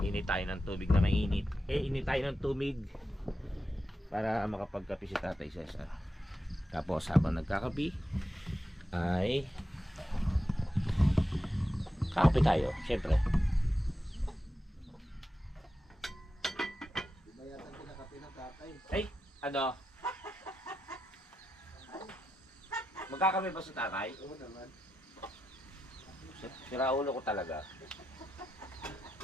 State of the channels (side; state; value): both; normal; correlation 0.89